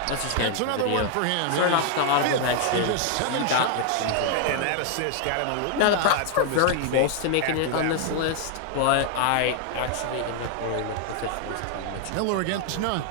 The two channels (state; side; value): different; both; correlation 0.00